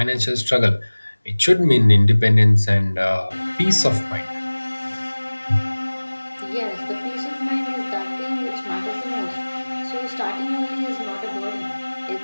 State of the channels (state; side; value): inverted; both; correlation -1.00